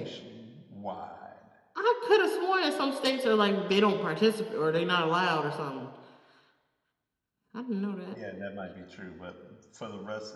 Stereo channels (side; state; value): both; identical; correlation 1.00